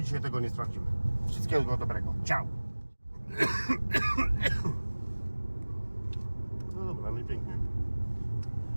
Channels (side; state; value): both; inverted; correlation -1.00